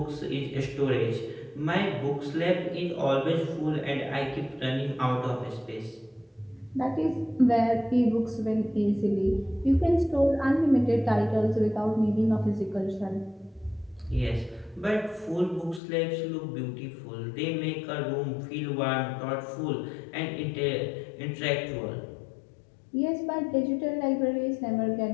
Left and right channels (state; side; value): drops out; right; at 15.8 s